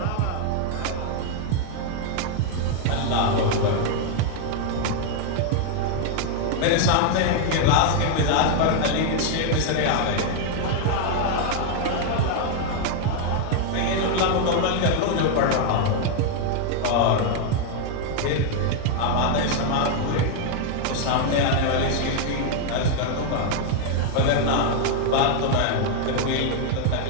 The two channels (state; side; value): different; both; correlation 0.00